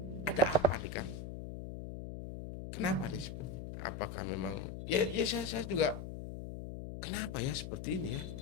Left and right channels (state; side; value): noise; left; hum, 8 dB below the sound